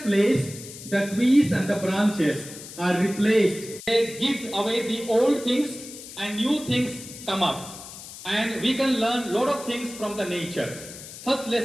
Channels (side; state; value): left; noise; hiss, 14 dB below the sound